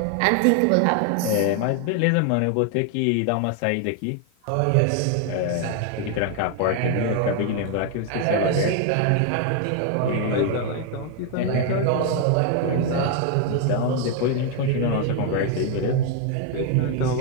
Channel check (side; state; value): both; different; correlation 0.01